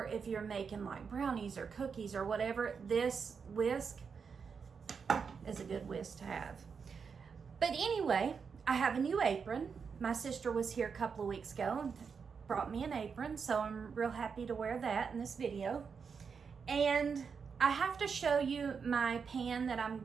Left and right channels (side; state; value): left; quieter; 5.9 dB